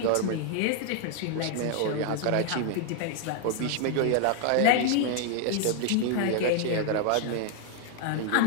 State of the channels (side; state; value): both; different; correlation 0.00